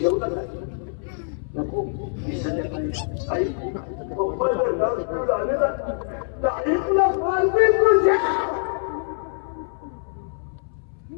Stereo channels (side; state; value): right; silent; 61 dB below the other